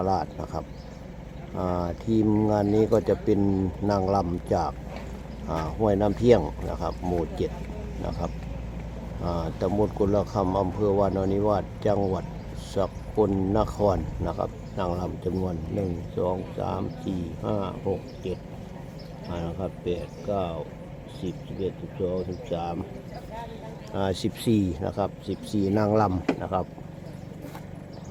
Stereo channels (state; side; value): identical; both; correlation 1.00